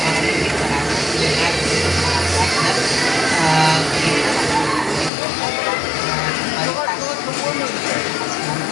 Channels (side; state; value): right; drops out; at 5.1 s